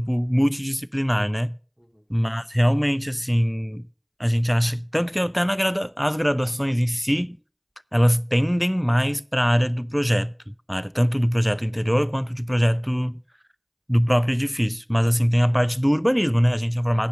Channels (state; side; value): identical; both; correlation 1.00